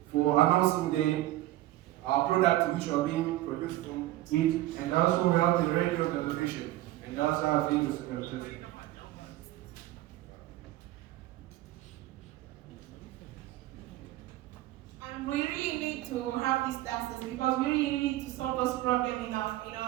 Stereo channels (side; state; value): left; quieter; 15.9 dB